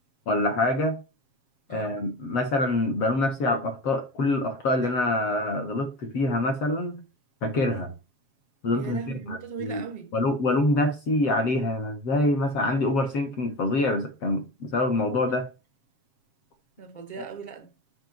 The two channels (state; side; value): late; right; 7.4 ms